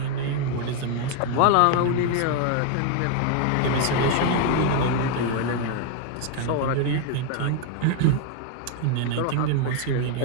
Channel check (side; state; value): both; different; correlation 0.01